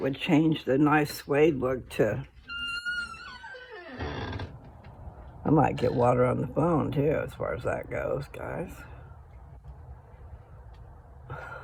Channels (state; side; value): identical; both; correlation 1.00